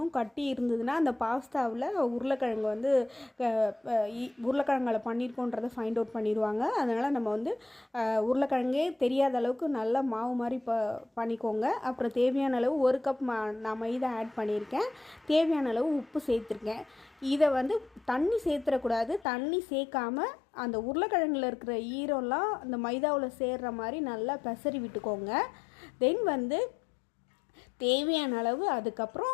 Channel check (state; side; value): drops out; right; at 19.2 s